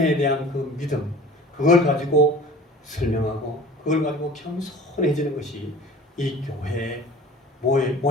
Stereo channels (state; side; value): normal; both; correlation 0.43